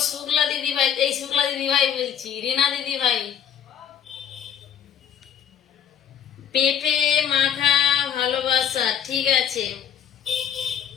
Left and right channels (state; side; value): quieter; right; 8.9 dB